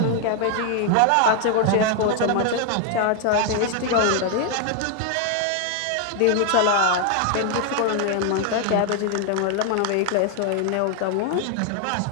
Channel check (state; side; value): different; both; correlation 0.00